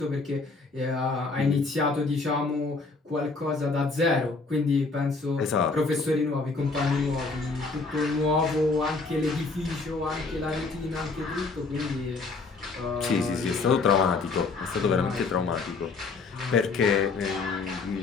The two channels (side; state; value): right; quieter; 4.0 dB